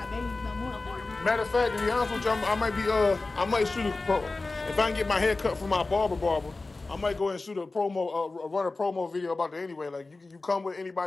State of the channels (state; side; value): quieter; right; 3.4 dB